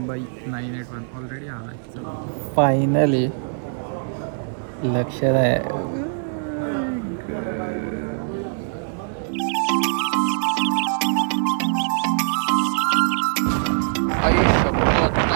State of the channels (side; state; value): left; silent; digital silence